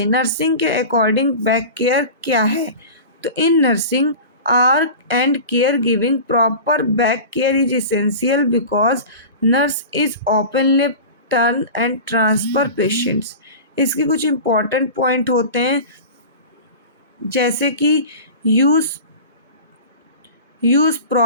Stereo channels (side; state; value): both; inverted; correlation -0.34